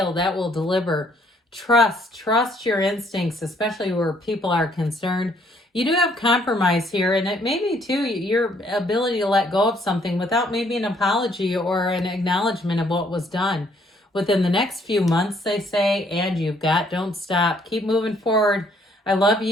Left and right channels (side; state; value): both; normal; correlation 0.66